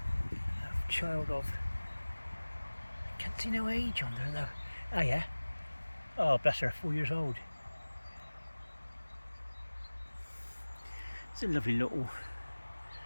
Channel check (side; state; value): both; inverted; correlation -1.00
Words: A child of, I can't see no age on there though. Oh yeah. Oh, bless her, 4 years old. It's a lovely little,